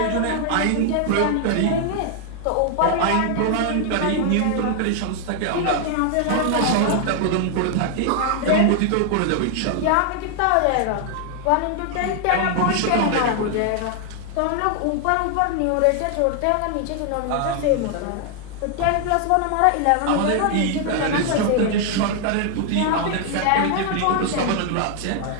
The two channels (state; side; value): different; both; correlation 0.00